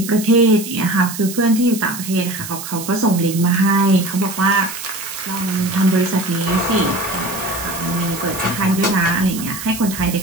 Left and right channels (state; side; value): noise; right; hiss, 10 dB below the sound